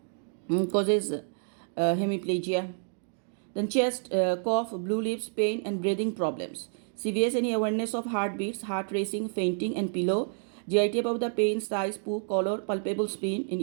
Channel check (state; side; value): silent; left; digital silence